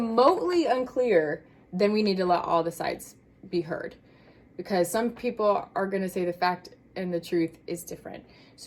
unclear, then we need to let all the sides be heard, because some people are going to say the fact and the truth is different.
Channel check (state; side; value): identical; both; correlation 1.00